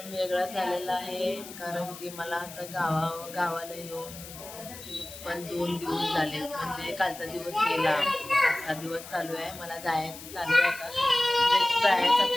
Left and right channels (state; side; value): noise; left; hiss, 14 dB below the sound